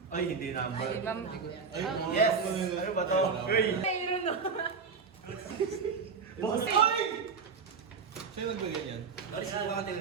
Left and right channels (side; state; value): left; quieter; 5.4 dB